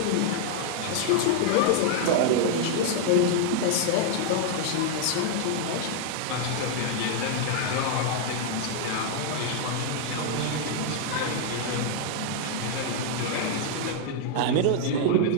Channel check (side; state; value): both; different; correlation 0.00